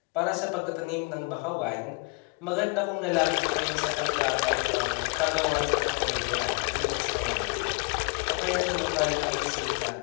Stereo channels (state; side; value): quieter; right; 32.7 dB